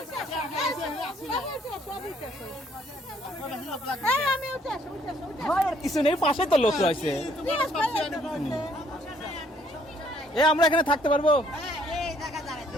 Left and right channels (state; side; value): normal; both; correlation 0.65